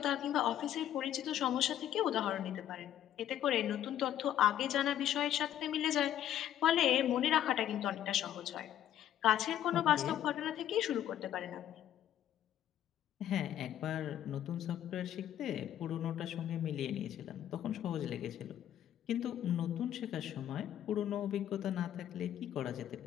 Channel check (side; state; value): right; quieter; 11.2 dB